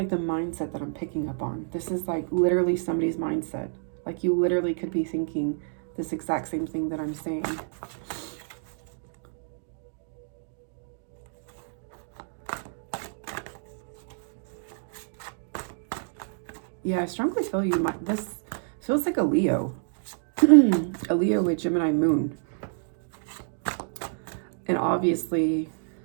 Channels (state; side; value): silent; left; digital silence